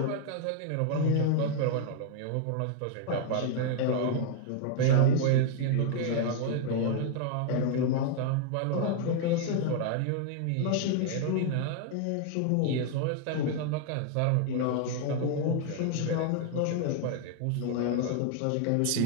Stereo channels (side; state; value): both; different; correlation 0.00